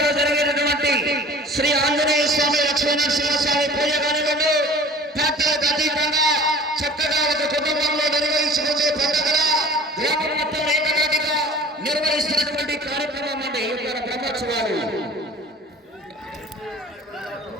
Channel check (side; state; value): both; normal; correlation 0.44